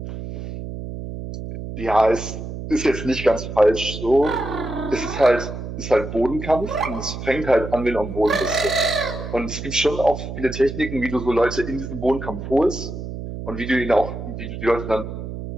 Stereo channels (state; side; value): noise; right; hum, 8 dB below the sound